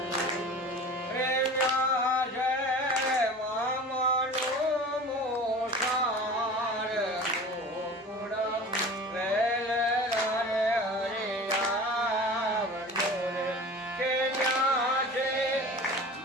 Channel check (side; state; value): both; normal; correlation 0.38